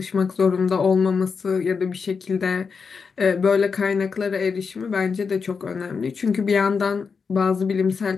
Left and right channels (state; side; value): quieter; right; 5.5 dB